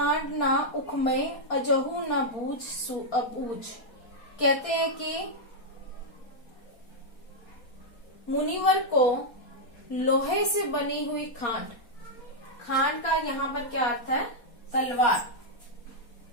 ना उखमय अजहू ना बूझ अबूझ। कहते हैं कि मुनिवर को लोहे से बनी हुई खांड, खांड का यहाँ पर क्या अर्थ है? तलवार,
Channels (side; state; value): right; late; 4.3 ms